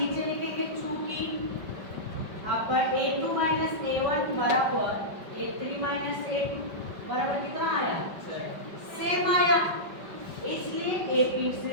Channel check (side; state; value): left; late; 5.2 ms